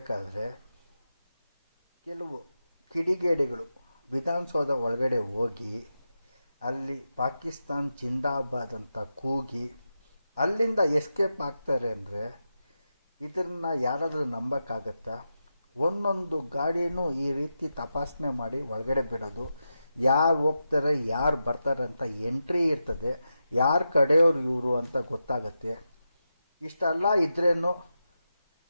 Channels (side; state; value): both; inverted; correlation -0.89